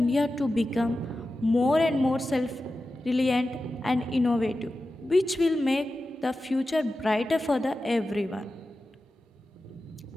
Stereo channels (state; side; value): normal; both; correlation 0.93